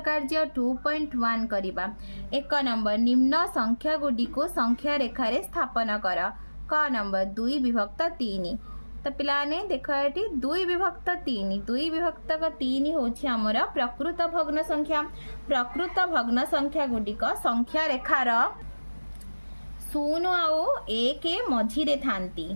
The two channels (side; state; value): both; inverted; correlation -1.00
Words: कार्य 2.1 करिबा। एक नंबर निम्न संख्या गुडी को संख्या रेखारे स्थापन कर। क नंबर 2 विभक्त 3। तो पिलाने देख ये 2 विभक्त 3 2 विभक्त 3 होछि हमर प्रकृत भग्न संख्या। प्रकृत भग्न संख्या गुडिक संख्या रेखार 0 आउ 1 मझिरे थांती।